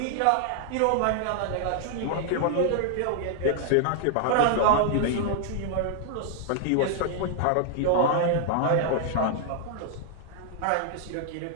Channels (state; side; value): different; both; correlation 0.00